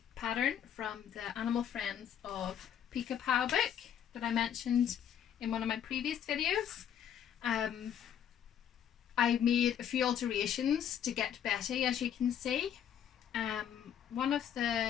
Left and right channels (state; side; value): quieter; right; 9.3 dB